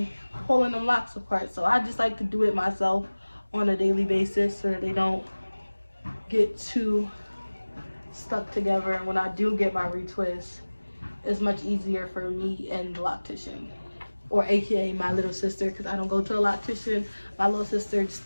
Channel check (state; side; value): inverted; both; correlation -1.00